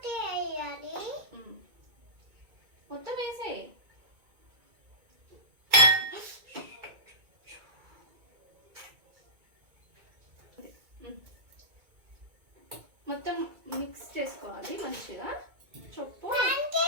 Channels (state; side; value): late; left; 2.2 ms